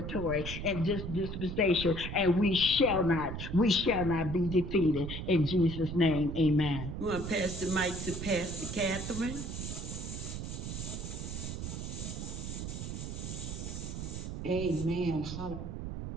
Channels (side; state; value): right; noise; rumble, 6 dB below the sound